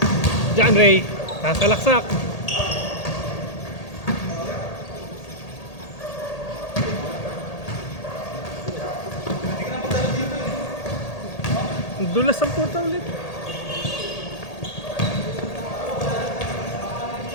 John Ray, kasalaksak. Dulas ang puta ulit.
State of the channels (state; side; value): late; right; 1.8 ms